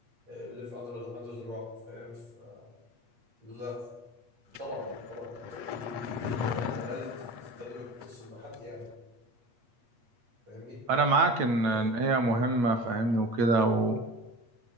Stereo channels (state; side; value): late; left; 8.4 ms